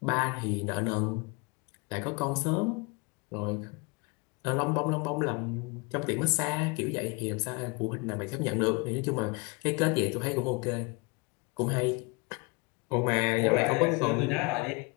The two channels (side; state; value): right; quieter; 28.4 dB